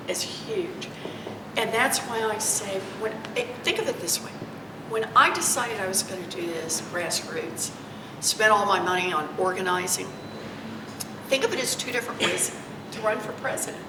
as huge. And that's why I say, think of it this way. When I decided I was going to do this grassroots, spent all my money on organizing, think of it as two different ways to run for president.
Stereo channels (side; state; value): both; identical; correlation 1.00